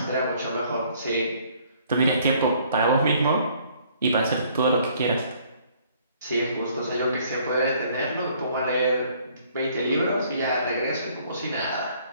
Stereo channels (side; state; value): both; inverted; correlation -0.61